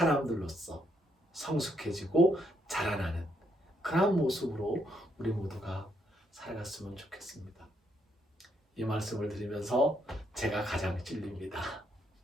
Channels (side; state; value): both; normal; correlation 0.75